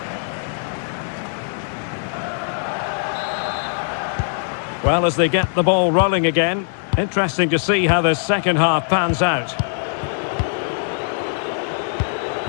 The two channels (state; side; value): silent; right; digital silence